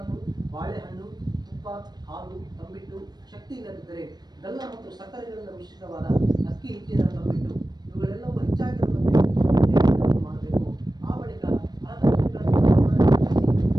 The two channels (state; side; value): late; left; 0.19 ms